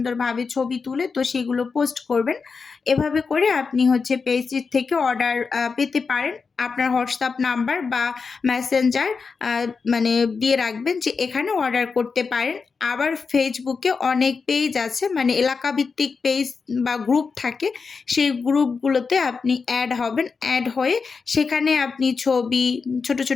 ছবি তুলে তো সেগুলো পোস্ট করবেন। এভাবে করে আপনি হচ্ছে পেজটির থেকে অর্ডার পেতে পারেন। আপনার হোয়াটসঅ্যাপ নাম্বার বা মেসেঞ্জার মানে দিয়ে রাখবেন যে এখানে অর্ডার করতে পারেন। আবার ফেসবুকে অনেক পেজ আছে, মানে এলাকাভিত্তিক পেজ বা গ্রুপ থাকে, সেই গ্রুপগুলোতে আপনি অ্যাড হবেন। অ্যাড হয়ে সেখানে আপনি ছবি, ছোট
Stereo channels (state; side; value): quieter; right; 5.0 dB